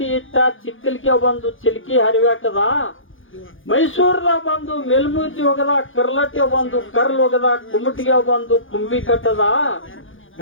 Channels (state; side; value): late; right; 0.58 ms